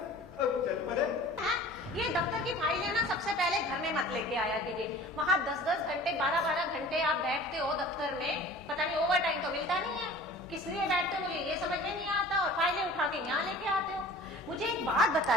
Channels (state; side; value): normal; both; correlation 0.43